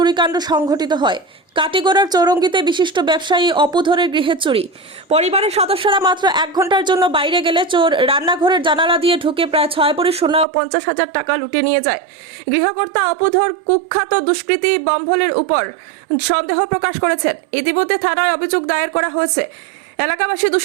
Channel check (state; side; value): drops out; left; at 10.5 s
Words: সংঘটিত হয়। কাটিগড়ার চৌরঙ্গিতে বিশিষ্ট ব্যবসায়ী অপুধরের গৃহে চুরি। পরিবারের সদস্যরা মাত্র 1 ঘন্টার জন্য বাইরে গেলে চোর রান্নাঘরের জানালা দিয়ে ঢুকে প্রায় 6 ভরি সোনা ও 50,000 টাকা লুটে নিয়ে যায়। গৃহকর্তা অপুধর কুখ্যাত দুষ্কৃতী বম্ভলের উপর সন্দেহ প্রকাশ করেছেন। ইতিমধ্যে থানায় অভিযোগ দায়ের করা হয়েছে। এলাকাবাসী